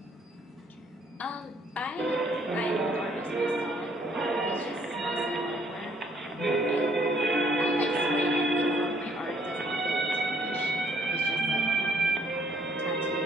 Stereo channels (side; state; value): both; normal; correlation 0.64